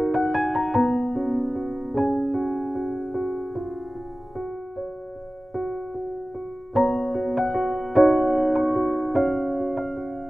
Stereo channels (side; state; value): both; normal; correlation 0.97